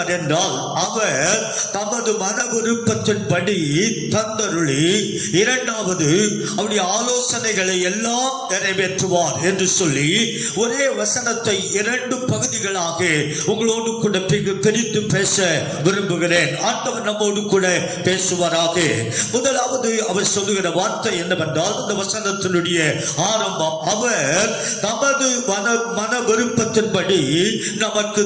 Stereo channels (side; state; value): both; identical; correlation 1.00